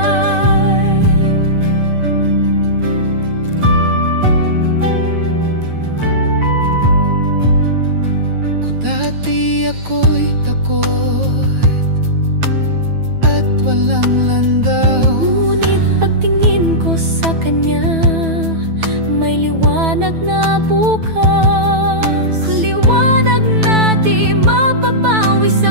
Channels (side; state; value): left; late; 9.1 ms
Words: Kung dati ako'y takot at walang landaw, ngunit pagtingin ko sa Kanya, may liwanag na bukas. Liwanag na di mapapawi, sa